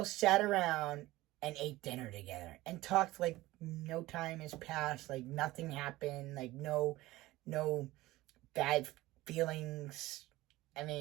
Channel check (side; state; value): left; quieter; 18.1 dB